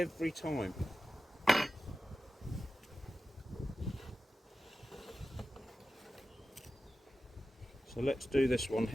time. So let's do this one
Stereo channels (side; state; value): both; normal; correlation 0.93